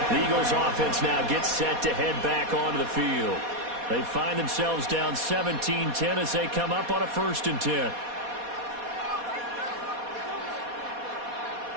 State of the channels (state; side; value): late; left; 4.2 ms